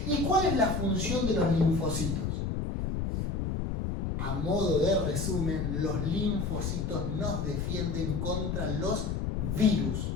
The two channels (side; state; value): left; noise; rumble, 1 dB below the sound